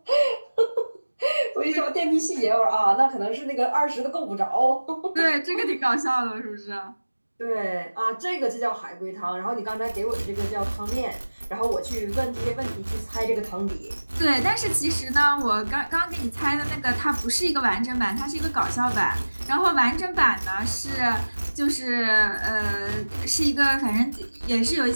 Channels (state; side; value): inverted; both; correlation -1.00